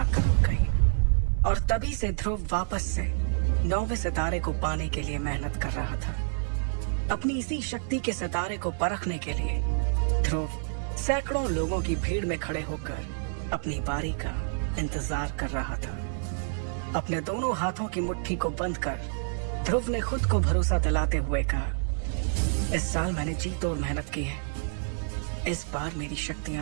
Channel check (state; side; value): silent; left; digital silence